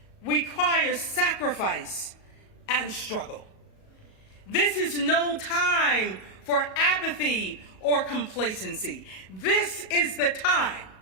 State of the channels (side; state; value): right; late; 37 ms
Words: requires sacrifice and struggle. This is no time for apathy or complacency. This is the time